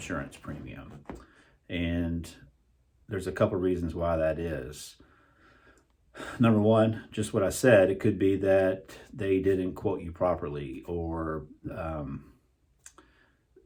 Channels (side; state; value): both; identical; correlation 1.00